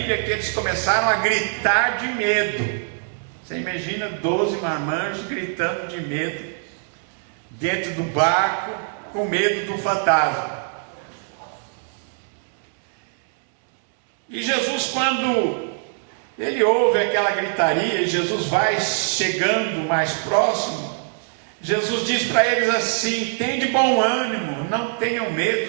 que eles começaram a gritar de medo. Você imagina 12 marmanjos gritando de medo dentro do barco, com medo do fantasma. E Jesus, quando ele ouve aquela gritaria, e Jesus vai chegando mais próximo, Jesus diz para eles assim: tem de bom ânimo, não tenham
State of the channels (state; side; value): silent; left; 62 dB below the other